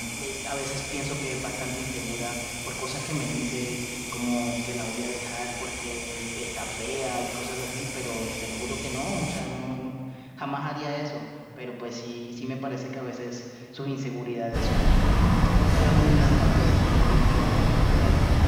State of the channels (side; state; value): both; identical; correlation 1.00